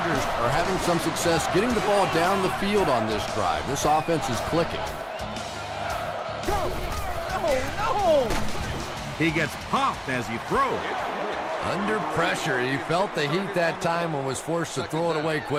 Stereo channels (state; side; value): identical; both; correlation 1.00